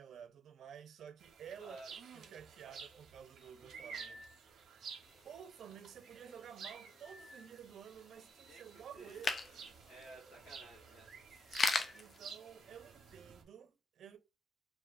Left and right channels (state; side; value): normal; both; correlation 0.81